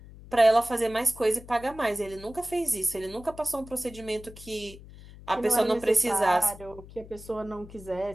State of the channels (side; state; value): left; noise; hum, 18 dB below the sound